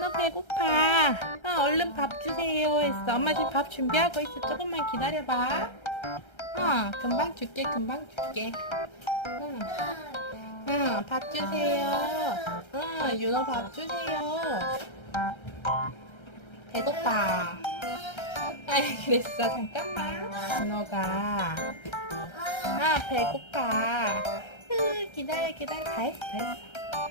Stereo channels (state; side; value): late; right; 1.3 ms